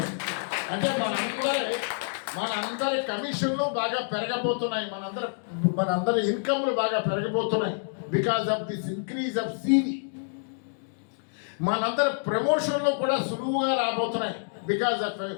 అంటే మనందరి కమిషన్లు బాగా పెరగబోతున్నాయి, మనందరి ఇన్కమ్లు బాగా పెరగబోతున్నాయి because of this increase of CV. మనందరి ప్రమోషన్లు కూడా సులువుగా రాబోతున్నాయి because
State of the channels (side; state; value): right; silent; digital silence